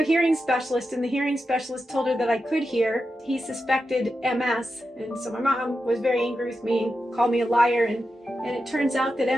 a hearing specialist, and the hearing specialist told her that I could hear. He suspected MS, and so my mom was very angry with me and called me a liar, and it turns out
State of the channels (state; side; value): normal; both; correlation 0.89